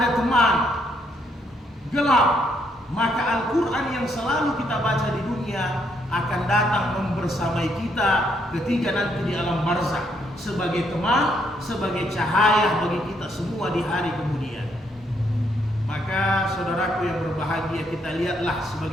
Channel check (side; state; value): both; normal; correlation 0.73